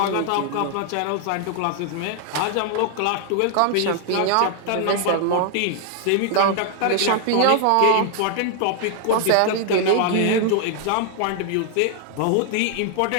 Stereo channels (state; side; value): different; both; correlation 0.00